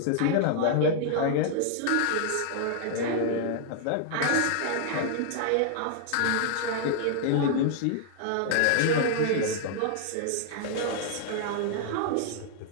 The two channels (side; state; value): both; different; correlation -0.01